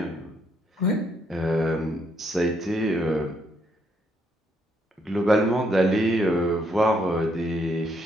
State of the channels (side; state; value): both; normal; correlation 0.73